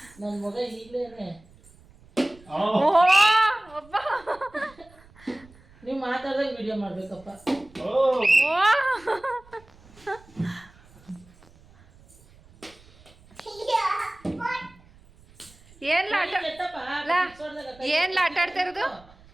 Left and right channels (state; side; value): noise; right; rumble, 26 dB below the sound